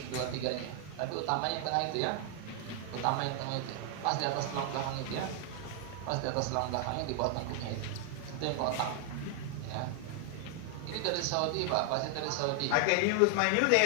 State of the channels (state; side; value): different; both; correlation 0.00